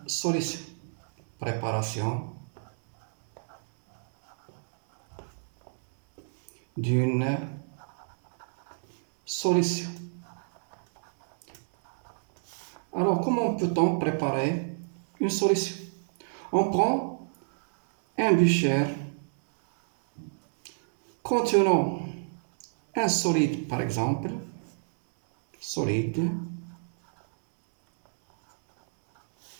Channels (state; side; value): silent; left; digital silence